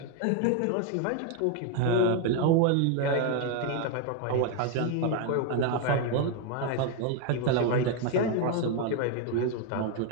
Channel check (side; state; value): both; different; correlation 0.01